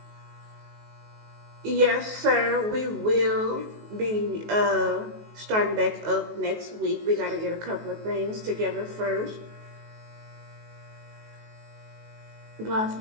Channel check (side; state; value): left; late; 19 ms